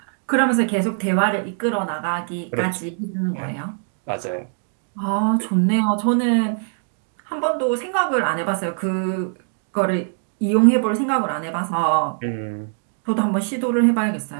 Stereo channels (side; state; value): left; silent; 58 dB below the other